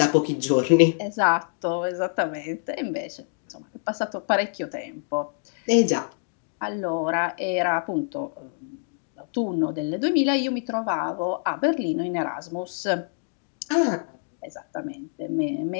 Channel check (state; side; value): silent; right; digital silence